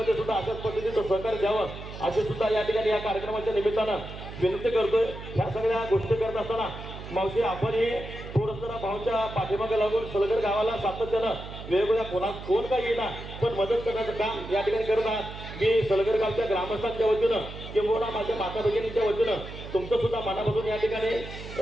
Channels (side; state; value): right; noise; hum, 11 dB below the sound